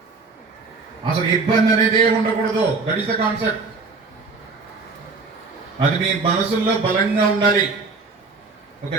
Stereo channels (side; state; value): left; quieter; 4.1 dB